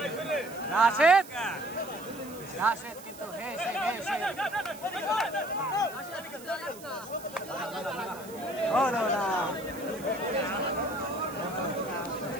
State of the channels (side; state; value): right; noise; hiss, 18 dB below the sound